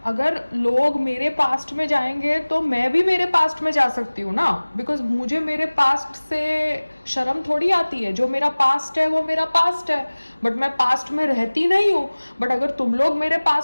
अगर लोग मेरे पास्ट में जाएंगे तो मैं भी मेरे पास्ट में जा सकती हूँ ना, बिकॉज मुझे मेरे पास्ट से शर्म थोड़ी आती है। जो मेरा पास्ट है वो मेरा पास्ट है, बट मैं पास्ट में रहती नहीं हूँ। बट अगर तुम लोग मेरे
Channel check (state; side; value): inverted; both; correlation -1.00